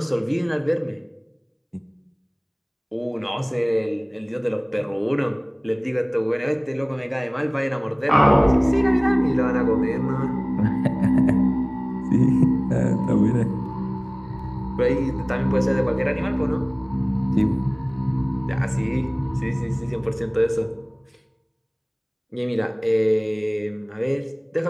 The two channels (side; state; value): both; identical; correlation 1.00